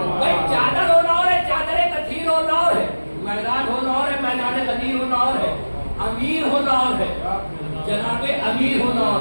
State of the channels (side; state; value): both; inverted; correlation -1.00